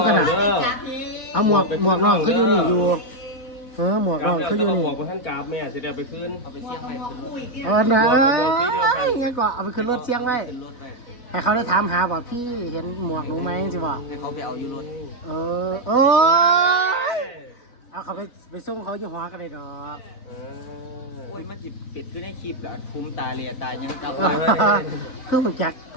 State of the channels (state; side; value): late; right; 4.1 ms